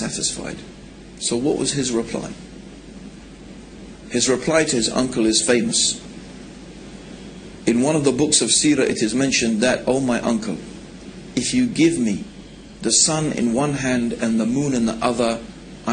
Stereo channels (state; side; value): identical; both; correlation 1.00